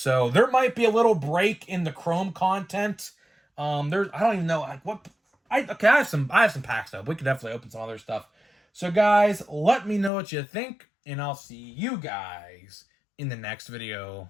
there might be a little break in the Chrome content. I don't even know like what. I have some packs though. We could definitely open some other stuff. So guys, let me know what you think, and I'll see you guys in the next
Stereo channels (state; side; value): drops out; right; at 10.1 s